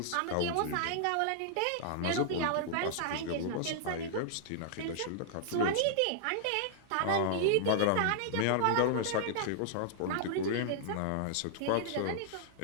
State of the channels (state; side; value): different; both; correlation -0.01